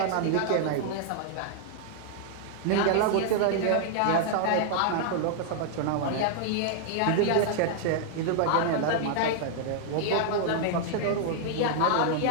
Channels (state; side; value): different; both; correlation 0.00